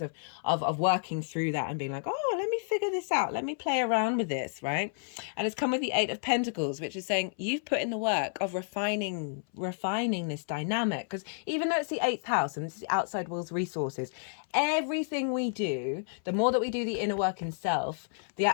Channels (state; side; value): silent; right; 57 dB below the other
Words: of working through that and being like, oh, let me figure this out, let me play around with this, right? And it's come with the 8 of Pentacles, which is saying you've put in the work of refining this dynamic, because even though it's the 8th house and this is the outside world's resources, everything we do, the more that we do the inner work in self,